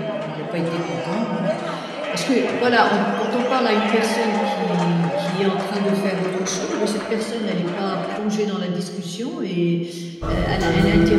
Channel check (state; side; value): identical; both; correlation 1.00